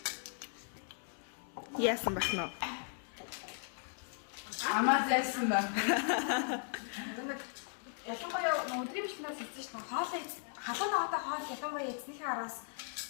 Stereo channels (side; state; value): right; silent; 53 dB below the other